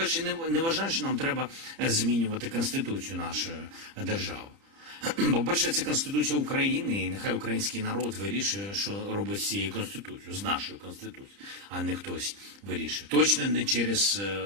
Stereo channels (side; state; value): left; late; 30 ms